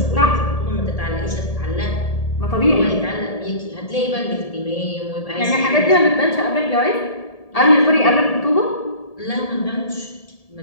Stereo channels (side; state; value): right; late; 1.7 ms